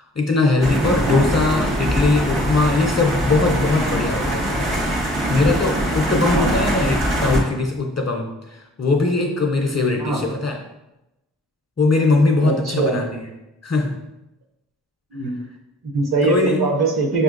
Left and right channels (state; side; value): normal; both; correlation 0.54